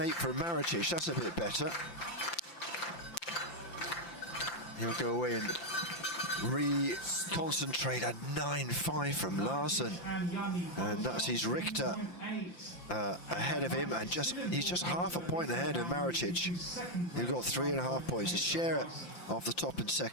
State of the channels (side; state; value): right; late; 5.8 ms